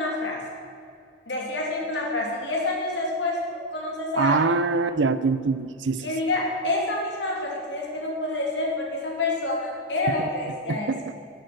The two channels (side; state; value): both; normal; correlation 0.00